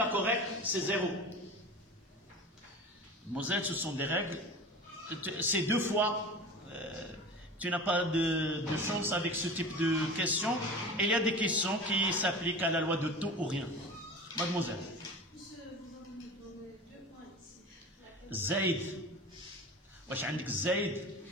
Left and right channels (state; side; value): normal; both; correlation 0.34